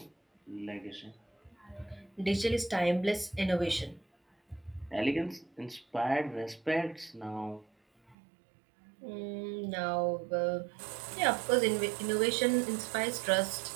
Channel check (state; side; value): drops out; left; at 8.2 s